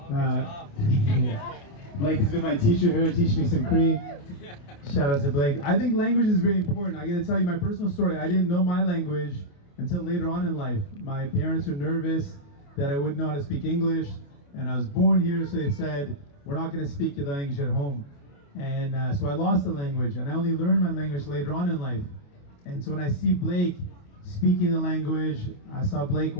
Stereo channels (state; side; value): late; right; 28 ms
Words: Blake has been my teacher here, teaching me some Cree. Shout out to Blake. I think language is very important. I gotta tell you my personal story. I didn't know my language until later on in life. My parents were nervous that I wouldn't know how to speak English, and I was born here, so they said, we're not gonna speak your language at home. And so I lost the language, and I only learned my language later on in life. And so when I see Blake speaking the language, I saw Blake